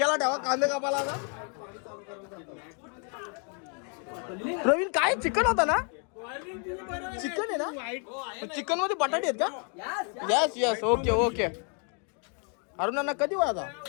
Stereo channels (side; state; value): right; quieter; 39.7 dB